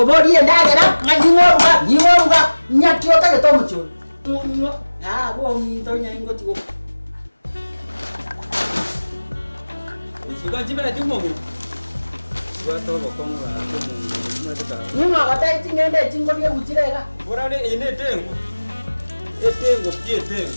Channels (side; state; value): both; inverted; correlation -1.00